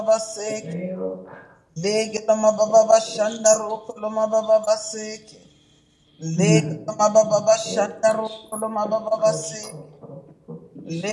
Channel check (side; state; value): both; identical; correlation 1.00